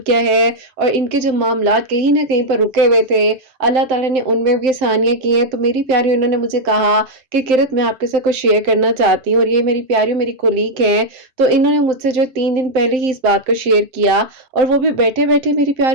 किया है, और इनके जो मामलात कहीं ना कहीं पर रुके हुए थे, अल्लाह ताला ने उनमें भी आसानियाँ की हैं। तो मेरी प्यारी उन्होंने मुझे कहा कि किरत मैं आपके साथ कुछ शेयर करना चाहती हूँ, और ये मेरी प्यारी मेरी कोलीग हैं। तो इन्होंने मुझसे जो 3 दिन पहले ही इस बात को शेयर किया, और वो भी बैठे बैठे मेरी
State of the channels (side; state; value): left; late; 7.7 ms